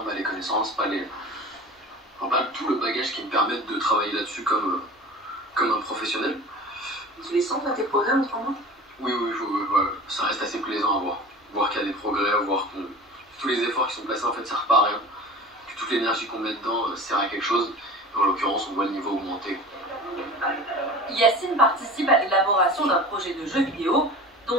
pas les connaissances, pas tout le bagage qui me permette de travailler là-dessus comme un professionnel. Tu les sens là, tes progrès en ce moment? Oui, ouais, ça reste assez plaisant à voir. Voir qu'il y a des progrès, voir que tous les efforts qui sont placés en fait servent pas à rien. Que toute l'énergie qu'on met dedans sert à quelque chose. Et en l'occurrence, on voit le niveau augmenter. Yacine participe à l'élaboration d'un projet de jeu vidéo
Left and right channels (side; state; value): both; normal; correlation 0.37